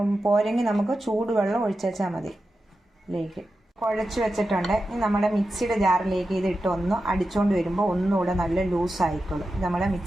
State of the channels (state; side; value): normal; both; correlation 0.91